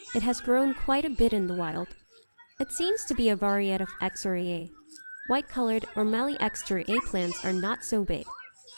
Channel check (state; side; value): inverted; both; correlation -1.00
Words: It has grown quite a bit in the wild. It seems to be a variety of Exora. White-colored or Mali Exora plants are not so big,